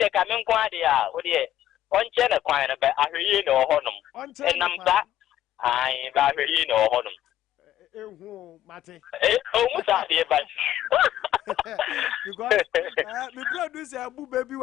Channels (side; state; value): right; quieter; 12.3 dB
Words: ka men kwa de a wo de onche na kwan na be ahwe na ohonom enam sa ai ba ahwe na ohonom ehu mate o mu sa de ba because me producer abu baby